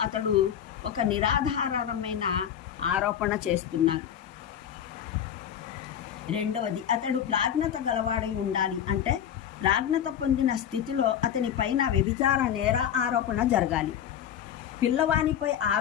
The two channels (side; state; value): right; quieter; 9.5 dB